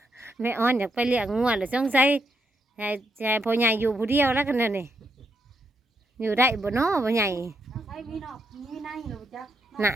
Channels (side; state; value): both; normal; correlation 0.79